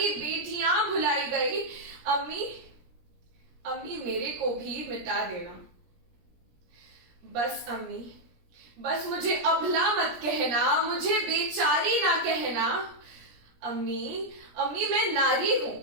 बेटियां भुलाई गई। अम्मी, अम्मी मेरे को भी मिटा देना। बस अम्मी, बस मुझे अबला मत कहना, मुझे बेचारी ना कहना। अम्मी, अम्मी मैं नारी हूं।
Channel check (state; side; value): late; left; 17 ms